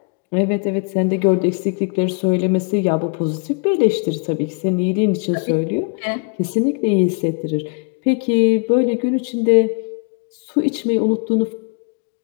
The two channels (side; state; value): right; quieter; 36.7 dB